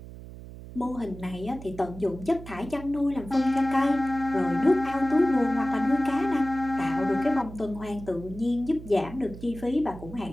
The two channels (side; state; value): right; noise; hum, 14 dB below the sound